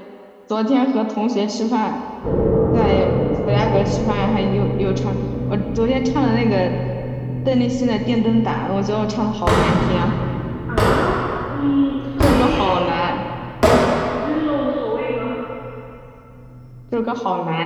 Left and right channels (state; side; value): identical; both; correlation 1.00